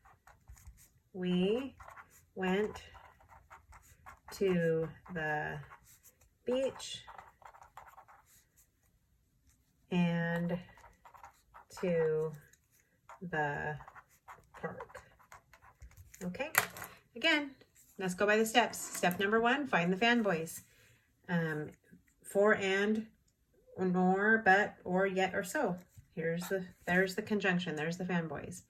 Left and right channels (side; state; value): both; identical; correlation 1.00